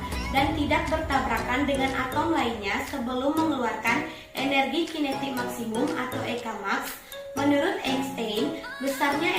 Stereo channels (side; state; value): both; identical; correlation 1.00